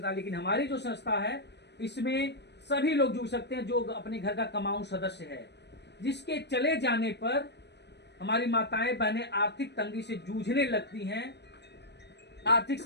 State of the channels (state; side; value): late; right; 0.50 ms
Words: लेकिन हमारी जो संस्था है इसमें सभी लोग जुड़ सकते हैं जो अपने घर का कमाऊ सदस्य है, जिसके चले जाने पर हमारी माताएं बहनें आर्थिक तंगी से जूझने लगती हैं, आर्थिक